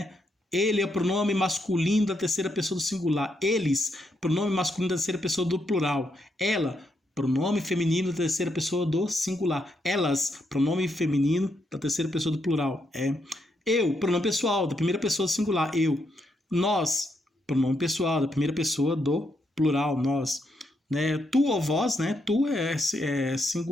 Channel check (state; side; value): normal; both; correlation 0.79